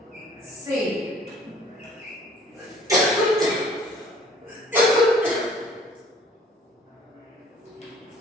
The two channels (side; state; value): both; normal; correlation 0.55